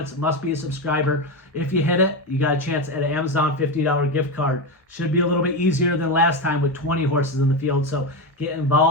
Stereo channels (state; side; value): normal; both; correlation 0.14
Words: It must be a subscriber. If you hit it, you got a chance at an Amazon $50 gift card. Should be a little bit easier than last time with 20 horses in the field. So get